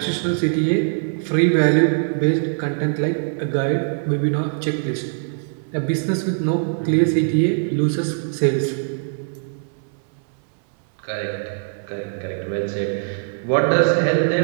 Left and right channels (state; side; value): silent; left; 64 dB below the other